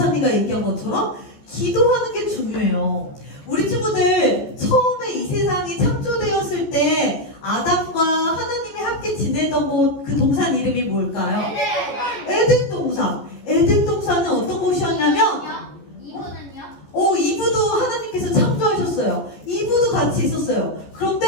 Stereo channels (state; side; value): late; right; 14 ms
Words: 얘기한 것처럼 기도하는 게 중요해요. 우리 친구들 처음에 이 세상이 창조되었을 때 아담과 하나님이 함께 지내던 그 동산 이름이 뭘까요? 에덴 동산. 에덴 동산은 어떤 곳이었냐면 이브도 하나님께서 창조하셨어요. 이브도 같이 있었어요.